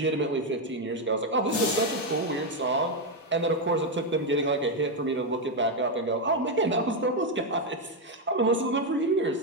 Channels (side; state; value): both; normal; correlation 0.04